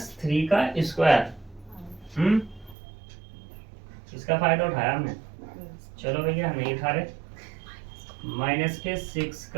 का स्क्वायर। इसका फायदा उठाया हमने। चलो भैया हम नहीं उठा रहे। -6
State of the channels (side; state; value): left; drops out; at 2.8 s